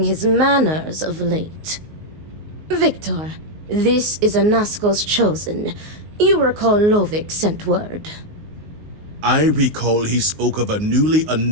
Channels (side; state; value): left; late; 19 ms